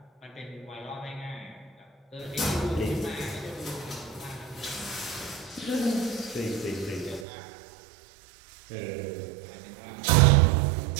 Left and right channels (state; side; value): drops out; left; at 7.2 s